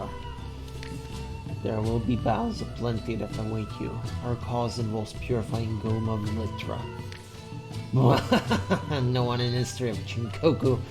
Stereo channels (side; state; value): both; identical; correlation 1.00